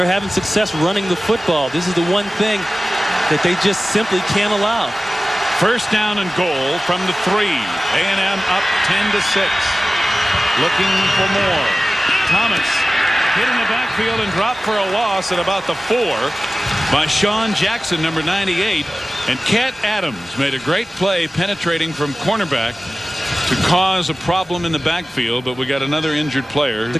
having success running the football. This is the one thing that they just simply can't allow. First down and goal from the 3. A&M up 10-6. Looking for more. Thomas hit in the backfield and dropped for a loss at about the 4 by Sean Jackson, number 98. And Cat Adams made a great play penetrating from cornerback to cause a problem in the backfield, but we got another injured player,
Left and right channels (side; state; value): both; normal; correlation 0.96